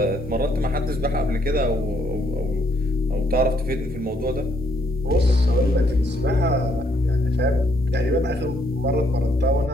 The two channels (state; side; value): normal; both; correlation 0.70